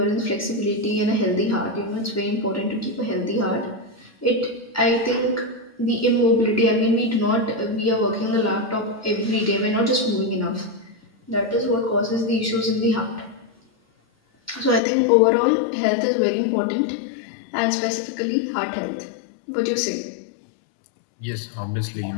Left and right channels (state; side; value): drops out; right; at 14.8 s